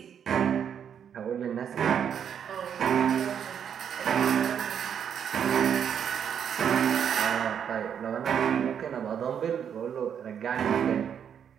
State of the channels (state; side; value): quieter; left; 8.2 dB